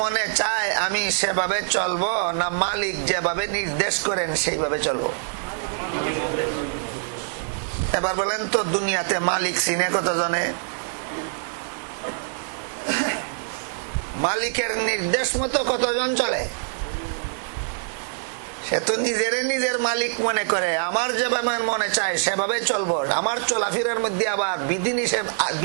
মনে চায় আমি সেভাবে চলবো, না মালিক যেভাবে নির্দেশ করেন সেইভাবে চলবো? এবার বলেন তো, দুনিয়াতে মালিক চিনে কতজনে? মালিকের নির্দেশ মতো কতজন চলে? সে তো নিজের মালিক মনে করে, আমার যেভাবে মনে চায় সেভাবে চলবো। আমার চলাফেরার মধ্যে আবার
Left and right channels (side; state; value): left; silent; 62 dB below the other